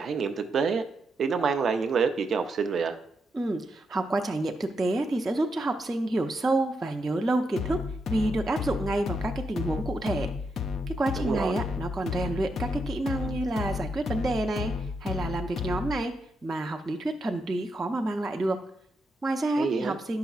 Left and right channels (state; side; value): normal; both; correlation 0.83